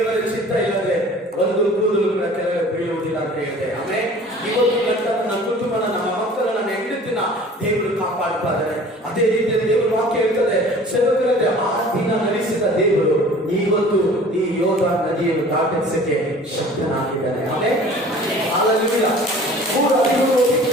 ಚಿತ್ತ ಇಲ್ಲದೆ ಒಂದು ಕೂದಲು ಕೂಡ ಕೆಳಗೆ ಬೀಳುವುದಿಲ್ಲ ಅಂತ ಹೇಳಿದೆ. ಆಮೇಲೆ ಇವತ್ತು ನನ್ನ ಕುಟುಂಬನ, ನಮ್ಮ ಮಕ್ಕಳ, ನನ್ನ ಹೆಂಡತಿನ ದೇವರು ಕಾಪಾಡ್ತಾ ಇದ್ದಾರೆ. ಅದೇ ರೀತಿಯಲ್ಲಿ ದೇವರು ವಾಕ್ಯ ಹೇಳ್ತದೆ, ಸೇವಕರಲ್ಲಿ ಆ ದಿನ ನಡೆಸಿದ ದೇವರು ಇವತ್ತು ಈ ಯೋರ್ದಾನ್ ನದಿಯನ್ನು ದಾಟಿಸಕ್ಕೆ ಶಕ್ತನಾಗಿದ್ದಾನೆ. ಆಮೇಲೆ ಹಲ್ಲೆಲೂಯಾ. 3:13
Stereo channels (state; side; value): normal; both; correlation 0.46